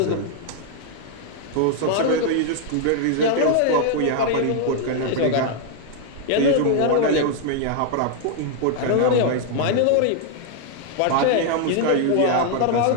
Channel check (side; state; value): both; different; correlation 0.00